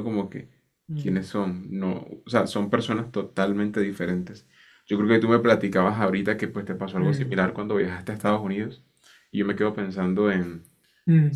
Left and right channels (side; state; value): both; identical; correlation 1.00